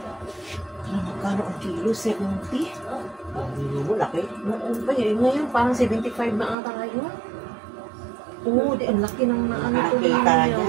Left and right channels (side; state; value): left; drops out; at 6.6 s